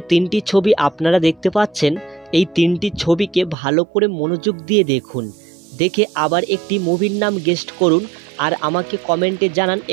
তিনটি ছবি আপনারা দেখতে পাচ্ছেন, এই তিনটি ছবিকে ভালো করে মনোযোগ দিয়ে দেখুন। দেখে আবার একটি মুভির নাম গেস্ট করুন আর আমাকে কমেন্টে জানান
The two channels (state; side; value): drops out; left; at 3.6 s